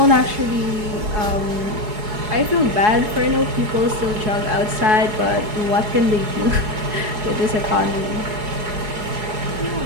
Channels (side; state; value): left; late; 4.7 ms